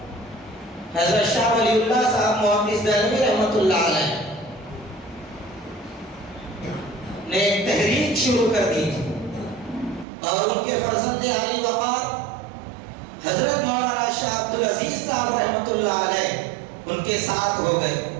حضرت شاہ ولی اللہ صاحب محدث دہلوی رحمت اللہ علیہ نے ایک تحریک شروع کر دی تھی، اور ان کے فرزند علی وقار حضرت مولانا شاہ عبدالعزیز صاحب رحمت اللہ علیہ ان کے ساتھ ہو گئے،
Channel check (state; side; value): drops out; left; at 10.1 s